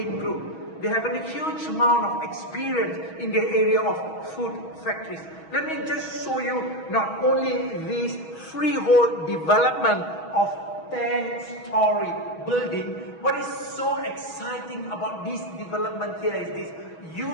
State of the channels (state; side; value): late; right; 6.2 ms